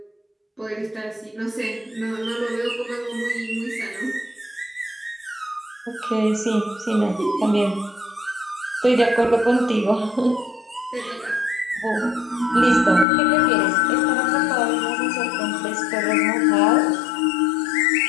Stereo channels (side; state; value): right; drops out; at 13.1 s